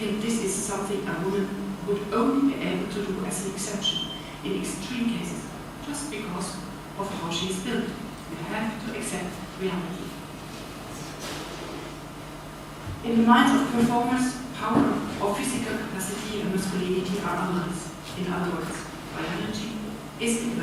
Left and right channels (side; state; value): both; identical; correlation 1.00